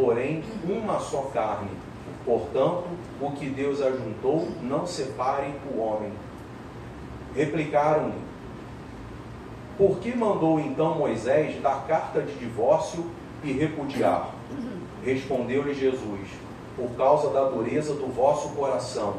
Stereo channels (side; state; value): both; identical; correlation 1.00